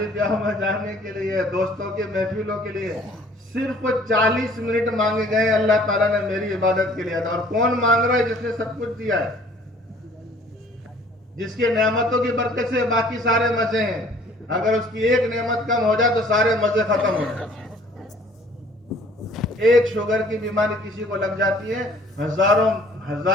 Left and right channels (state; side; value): normal; both; correlation 0.55